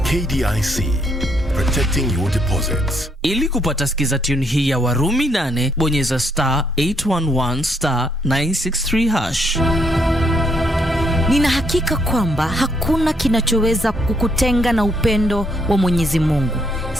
KDIC, protecting your deposits. Ili kupata skiza tune hii ya Warumi 8, bonyeza *811*963#. Nina hakika kwamba hakuna kinachoweza kukutenga na upendo wa Mwenyezi Mungu.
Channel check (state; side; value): normal; both; correlation 0.72